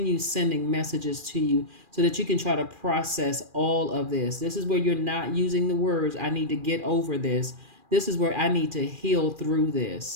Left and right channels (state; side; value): late; left; 2.4 ms